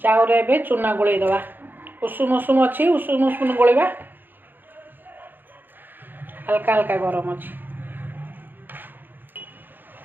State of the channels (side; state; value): left; late; 0.092 ms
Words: रे बे चूना गुले दवा। उषुम उषुम अच्छी उषुम उषुम गोलेबा। हल्का हल्का गरम अच्छी।